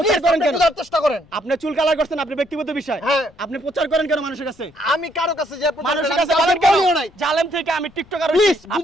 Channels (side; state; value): left; noise; rumble, 29 dB below the sound